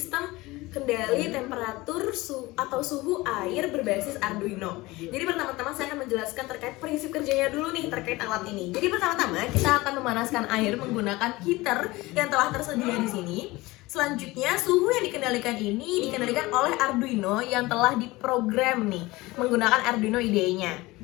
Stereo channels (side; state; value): right; quieter; 20.6 dB